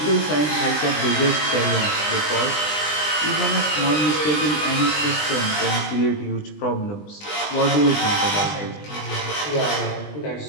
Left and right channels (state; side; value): late; right; 20 ms